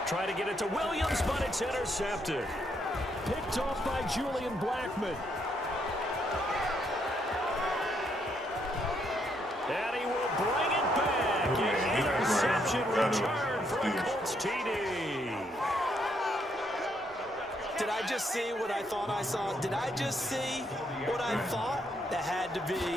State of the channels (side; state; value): both; normal; correlation 0.74